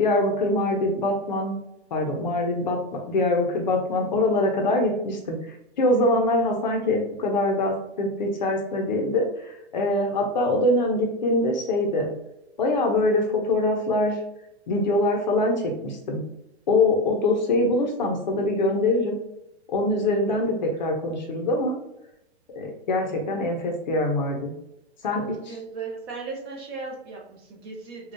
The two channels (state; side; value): normal; both; correlation 0.17